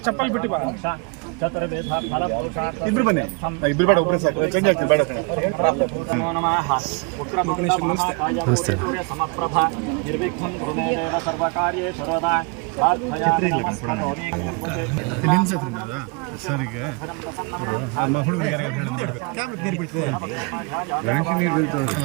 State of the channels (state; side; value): quieter; left; 31.4 dB